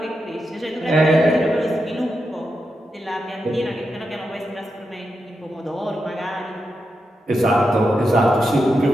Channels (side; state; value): both; normal; correlation 0.87